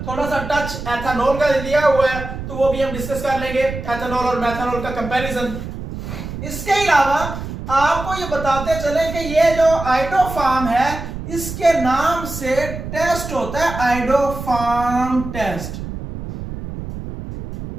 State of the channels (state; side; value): noise; right; rumble, 8 dB below the sound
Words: थोड़ा सा टच एथेनॉल का दिया हुआ है, तो वो भी हम डिस्कस कर लेंगे, एथेनॉल और मेथनॉल का कंपैरिजन। इसके अलावा आपको ये बताते चले कि ये जो आइडोफार्म है इसके नाम से टेस्ट होता है आइडोफार्म टेस्ट,